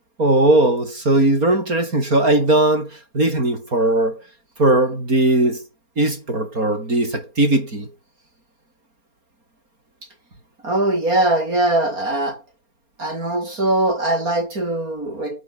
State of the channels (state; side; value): late; left; 4.3 ms